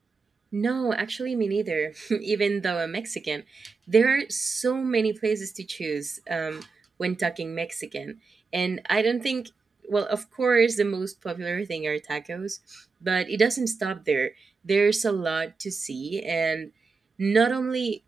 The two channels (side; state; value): left; quieter; 4.5 dB